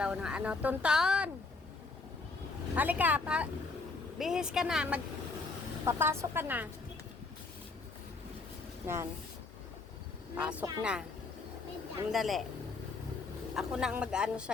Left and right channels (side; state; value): right; quieter; 3.9 dB